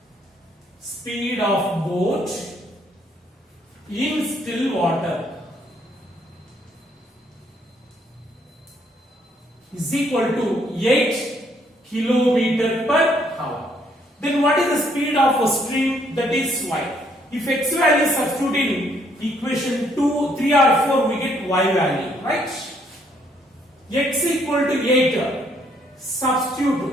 Speed of boat in still water is equal to 8 kilometer per hour. Then what is the speed of a stream? That is y. If x value is substituted in equation 2, 3 or 4, we get y value, right? X equal to 8,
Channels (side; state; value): both; normal; correlation 0.68